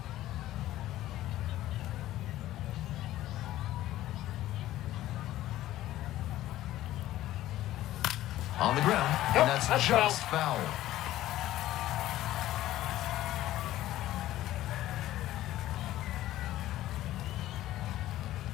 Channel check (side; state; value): right; quieter; 14.6 dB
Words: On the ground, Nope, and that's that's just foul.